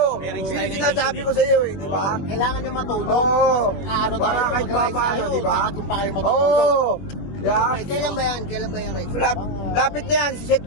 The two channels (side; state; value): right; late; 21 ms